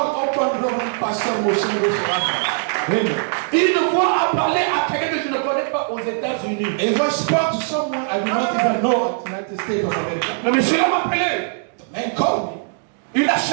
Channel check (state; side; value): silent; left; digital silence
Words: Reverend Pastor Mosengo Serra." Amen. Une voix a parlé à quelqu'un que je ne connais pas aux États-Unis. If I spoke to someone I do not even know at the United States of America, Le monsieur m'a appelé. the man called me. Il a